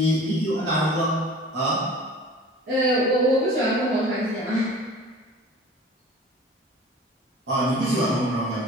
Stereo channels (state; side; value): normal; both; correlation 0.43